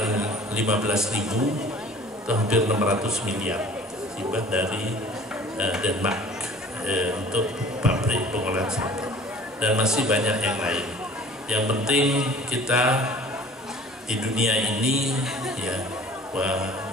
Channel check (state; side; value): normal; both; correlation 0.48